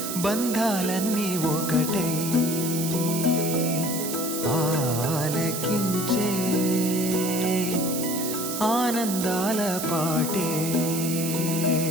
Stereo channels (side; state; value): right; noise; hiss, 5 dB below the sound